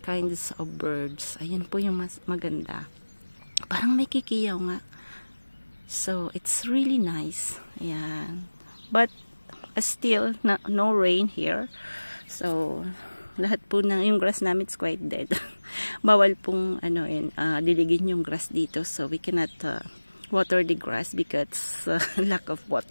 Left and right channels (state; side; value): inverted; both; correlation -1.00